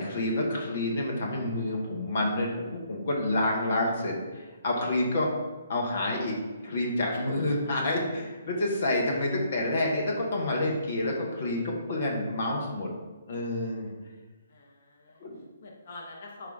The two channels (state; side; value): inverted; both; correlation -0.67